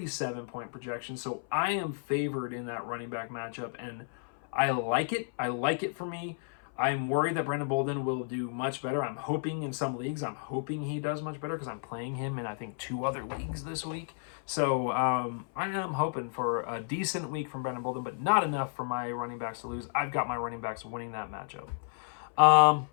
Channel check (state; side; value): silent; right; 56 dB below the other